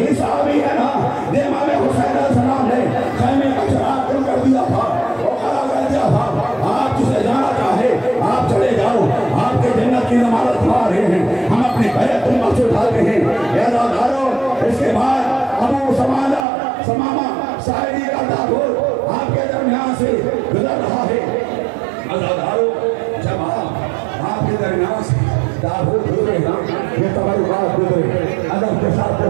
صحابی ہے نا جو امام حسین علیہ السلام نے خیمے کا چراغ کھول کر دیا تھا، وہ کھڑا کر دیا تھا، آپ جسے جانا چاہے آپ چلے جاؤ، آپ کے جنت کی ضمانت کھا رہے ہیں، ہم اپنی بیعت امت سے اٹھاتے ہیں۔ عزادارو اس کے بعد ابو سمامہ ساعدی کا تابوت آپ کے درمیان سے گزر رہا ہے۔ عزادارو جب آپ کے درمیان سے تابوت گزرے نا، یہ تبرکات گزرے، ادب کے ساتھ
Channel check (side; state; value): left; drops out; at 16.4 s